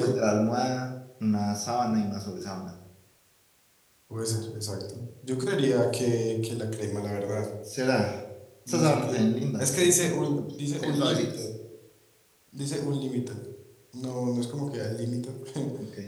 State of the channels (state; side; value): identical; both; correlation 1.00